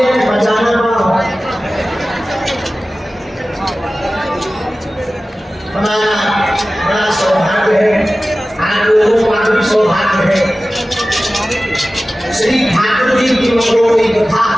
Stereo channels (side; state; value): both; normal; correlation 0.96